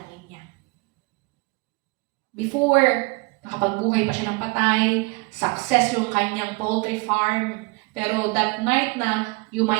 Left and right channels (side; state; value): left; quieter; 27.5 dB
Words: niya. Before, nakapagbuhay pa siya ng patay, success yung kanyang poultry farm. Pero that night na